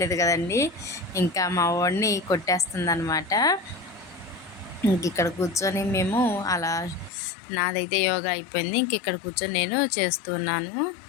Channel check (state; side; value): drops out; right; at 7.1 s